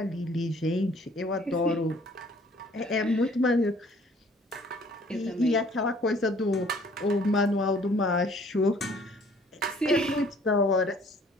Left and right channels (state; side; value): normal; both; correlation 0.57